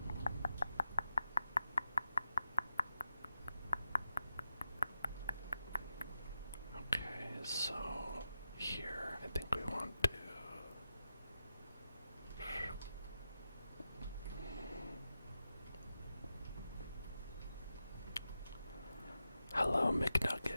Okay, so here I think we want to hello,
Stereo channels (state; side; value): inverted; both; correlation -0.89